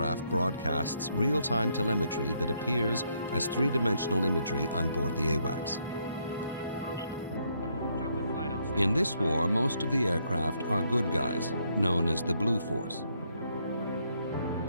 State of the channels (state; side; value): inverted; both; correlation -0.73